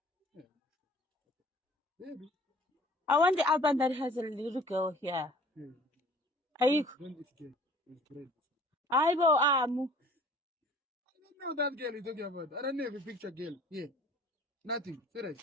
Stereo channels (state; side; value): normal; both; correlation 0.50